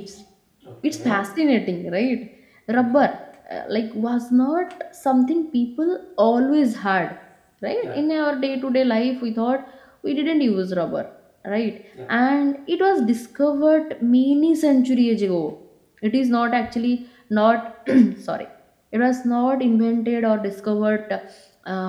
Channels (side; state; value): both; identical; correlation 1.00